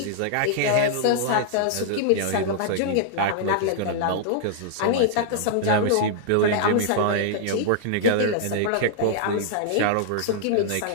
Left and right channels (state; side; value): different; both; correlation -0.01